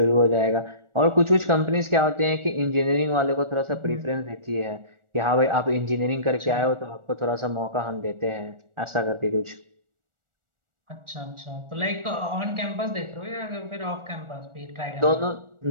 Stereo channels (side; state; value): left; late; 1.4 ms